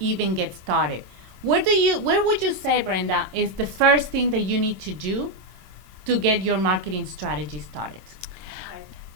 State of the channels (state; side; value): late; left; 25 ms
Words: get started. Where would you say, Brenda, is the first thing that you need to do to get your marketing strategy started?